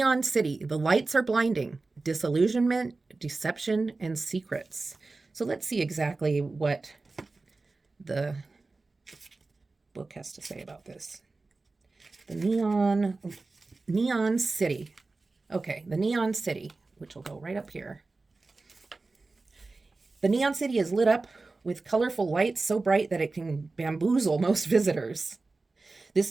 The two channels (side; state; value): left; quieter; 3.6 dB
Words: City, the lights are blinding. Disillusionment, deception, and secrets. So let's see exactly what the book has to say about this. The Neon City. Okay, the Neon City, which will go right up here. The Neon City is lit up with colorful lights so bright that it can bamboozle most visitors.